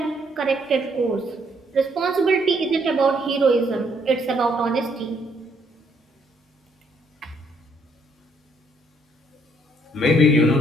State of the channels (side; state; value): both; normal; correlation 0.70